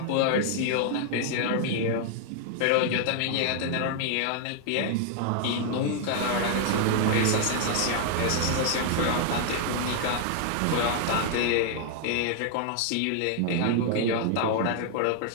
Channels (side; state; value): both; different; correlation 0.00